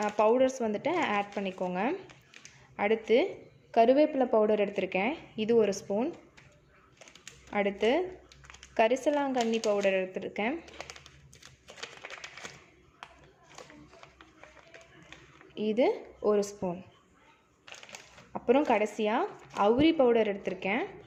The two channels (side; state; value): both; identical; correlation 1.00